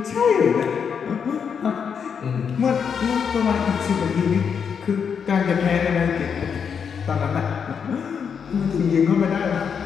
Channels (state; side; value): quieter; right; 6.9 dB